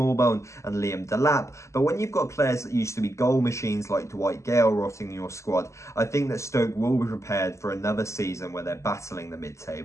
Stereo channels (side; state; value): right; late; 0.14 ms